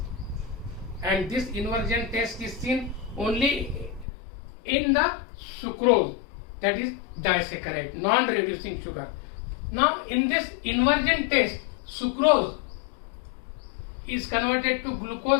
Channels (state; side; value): drops out; right; at 4.0 s